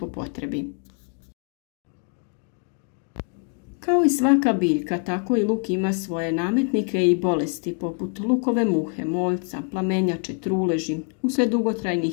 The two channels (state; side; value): quieter; right; 38.9 dB